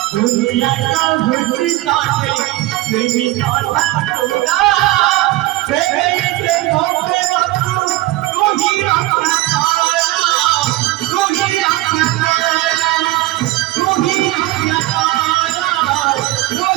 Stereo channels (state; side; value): quieter; left; 17.8 dB